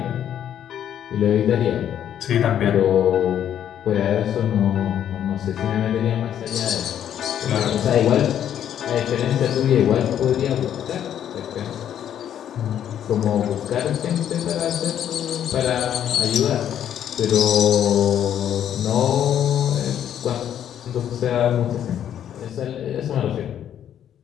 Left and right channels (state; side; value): quieter; right; 10.0 dB